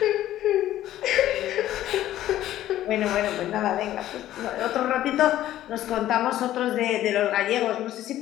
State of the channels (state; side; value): quieter; right; 13.3 dB